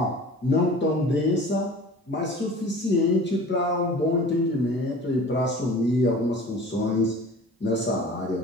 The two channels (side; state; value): both; normal; correlation 0.42